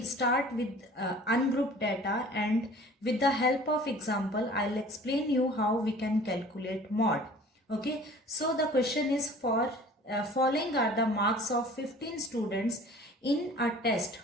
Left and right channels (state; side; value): normal; both; correlation 0.47